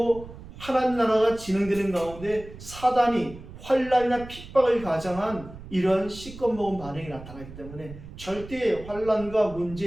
하나님 나라가 진행되는 가운데 사단이 환난이나 핍박을 가장한 이런 시꺼 먹은 반응이 나타나기 때문에 절대 환난과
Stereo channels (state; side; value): noise; right; rumble, 15 dB below the sound